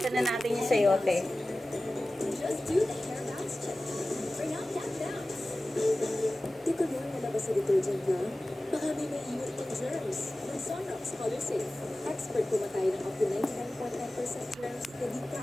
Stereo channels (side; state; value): both; normal; correlation 0.96